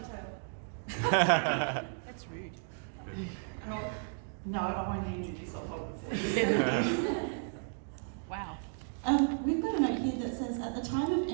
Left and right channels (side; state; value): left; silent; 55 dB below the other